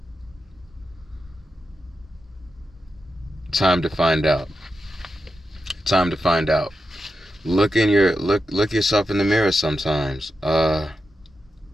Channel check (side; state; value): both; normal; correlation 0.89